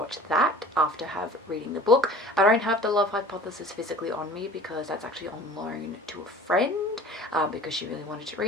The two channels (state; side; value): normal; both; correlation 0.44